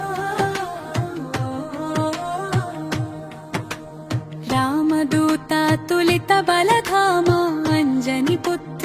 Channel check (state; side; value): identical; both; correlation 1.00